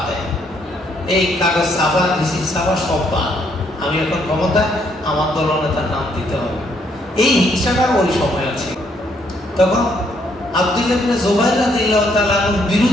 দেয়, এই কাগজ ছাপা, রিসিট ছাপা সব বাদ, আমি এখন ক্ষমতায়, আমার দলনেতার নাম দিতে হবে। এই হিংসাটা ওই সময় আছে। তখন আব্দুল্লাহ ইবনে জুবাইর রাদিয়াল্লাহু তাআলা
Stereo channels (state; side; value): normal; both; correlation 0.71